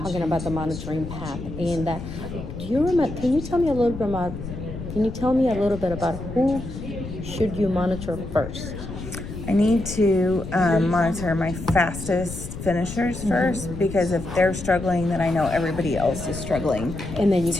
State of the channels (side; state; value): left; noise; rumble, 9 dB below the sound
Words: about the monitoring path. And do you remember? Can you tell me a little bit about? Can you tell me a little bit about who should you monitor first? I need to monitor my fastest finishers first, because if they're struggling, then I know everybody else is struggling And then you